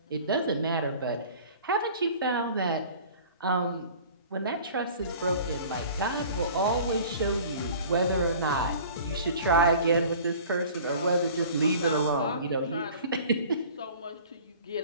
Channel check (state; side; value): inverted; both; correlation -0.45